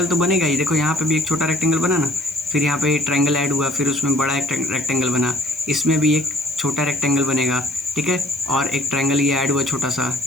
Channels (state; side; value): noise; left; hiss, 24 dB below the sound